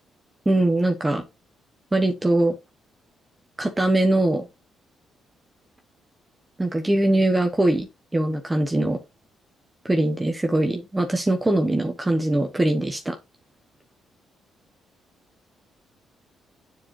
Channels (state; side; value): normal; both; correlation 0.95